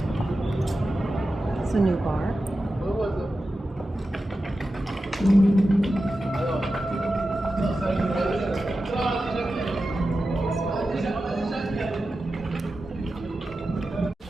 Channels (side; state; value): both; normal; correlation 0.92